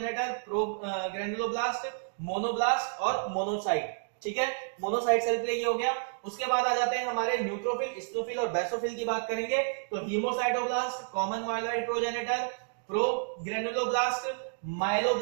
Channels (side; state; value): left; silent; digital silence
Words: प्रोग्रेन्युलोब्लास्ट, मोनोब्लास्ट और मोनोसाइट। ठीक है, मोनोसाइट सेल के लिए ये हो गया। उसके बाद आ जाते हैं हमारे न्यूट्रोफिल, इस्नोफिल और बेसोफिल की बात करेंगे। तो हीमोसाइटोब्लास्ट, कॉमन माइलॉइड प्रोजेनेटर, प्रोग्रेन्युलोब्लास्ट,